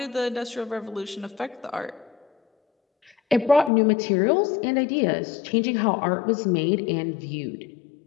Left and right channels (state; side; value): drops out; right; at 3.7 s